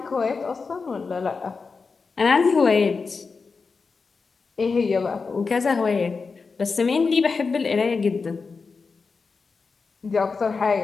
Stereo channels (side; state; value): right; quieter; 4.7 dB